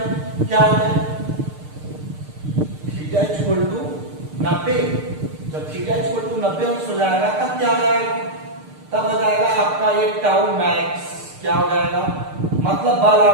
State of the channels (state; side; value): late; left; 6.6 ms